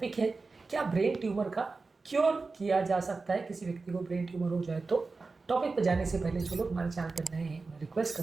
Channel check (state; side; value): quieter; left; 4.0 dB